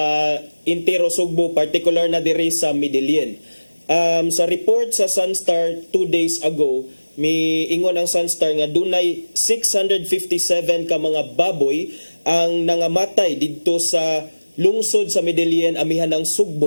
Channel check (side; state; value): both; inverted; correlation -1.00